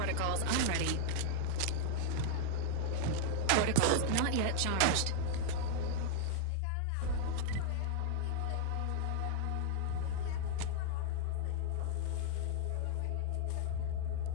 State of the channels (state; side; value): different; both; correlation -0.01